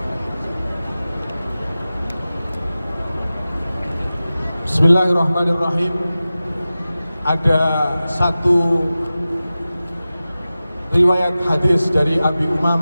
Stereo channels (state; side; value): inverted; both; correlation -0.95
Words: Bismillahirrahmanirrahim. Ada satu riwayat hadis dari Abi